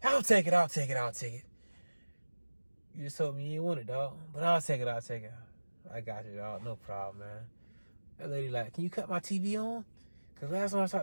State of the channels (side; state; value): both; inverted; correlation -1.00